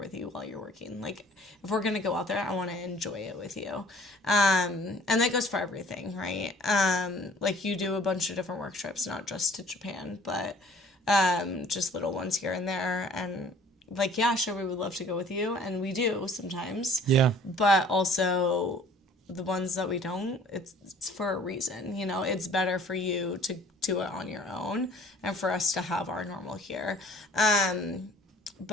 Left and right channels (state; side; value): normal; both; correlation 0.53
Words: you while you're working. Like, if we're going to go out there, I want to enjoy it with you. And that goes for everything, right? Like, you do a bunch of different work trips, not just to Japan, but just little ones here and there. And, like, yeah, sure, we would love to go with you. And we do sometimes. Yeah. But also, the ones that we don't, it's for a reason, you know? It's better for you to do it on your own and for us to have our normal here.